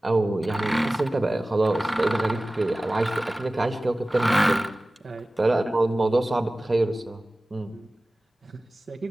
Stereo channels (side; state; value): both; normal; correlation 0.97